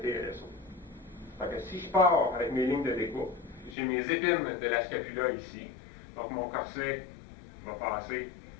Donc, si je pars avec mes lignes de découpe, j'ai mes épines de la scapula ici. Donc, mon corset va passer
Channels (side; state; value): right; drops out; at 3.8 s